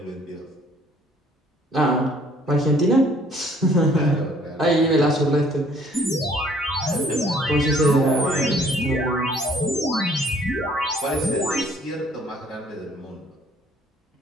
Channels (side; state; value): both; normal; correlation 0.59